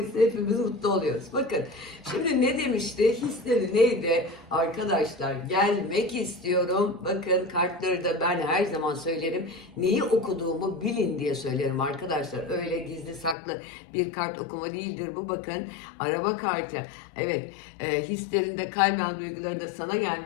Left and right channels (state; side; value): drops out; right; at 13.4 s